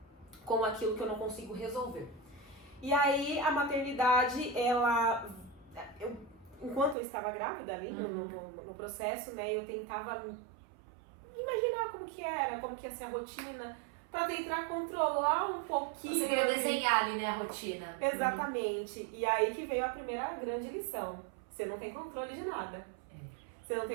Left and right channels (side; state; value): left; drops out; at 7.0 s